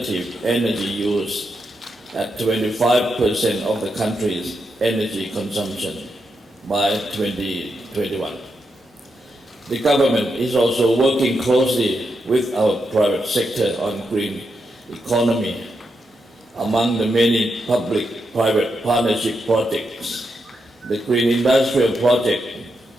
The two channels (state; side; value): normal; both; correlation 0.84